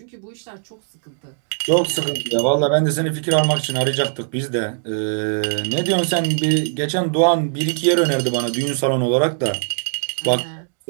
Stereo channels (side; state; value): left; silent; digital silence